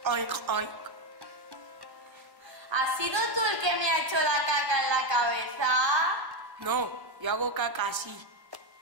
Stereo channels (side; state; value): left; late; 1.1 ms